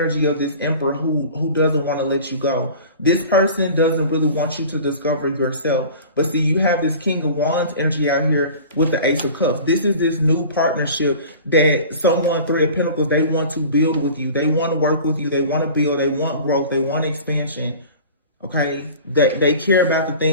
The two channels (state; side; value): inverted; both; correlation -0.40